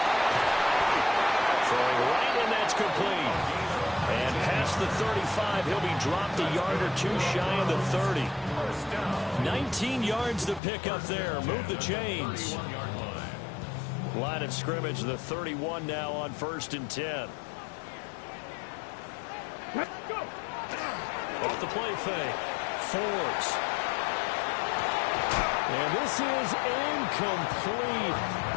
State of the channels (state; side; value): drops out; right; at 10.6 s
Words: Throwing right, and that's complete. And past the 35, he'll be dropped a yard or two shy of the 30. 19 yards to pick up there. Move the chains. Line of scrimmage, the 31 now on 1st and 10. Let's go. Off the play fake. Forbes. And this is incomplete.